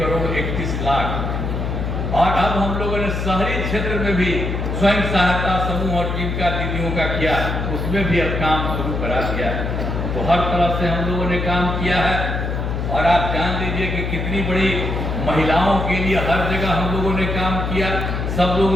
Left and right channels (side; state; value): left; noise; hum, 2 dB below the sound